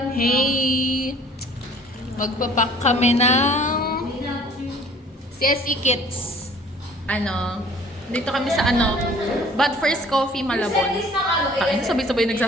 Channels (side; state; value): both; normal; correlation 0.52